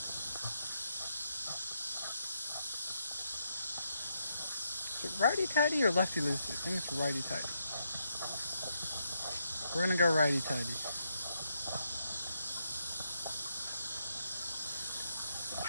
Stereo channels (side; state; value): both; inverted; correlation -0.79